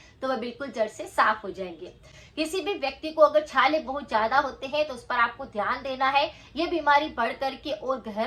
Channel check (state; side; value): identical; both; correlation 1.00